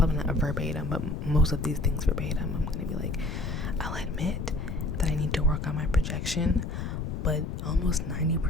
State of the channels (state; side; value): noise; left; rumble, 5 dB below the sound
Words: not a verbatim, but most of these things verbatim, I'm gonna be like, I'll admit that I need to work on my projection, but almost